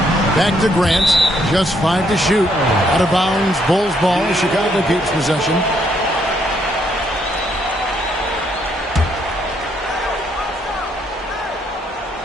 Back to Grant. Just 5 to shoot. Out of bounds. Bulls ball. Chicago keeps possession.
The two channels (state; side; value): normal; both; correlation 0.71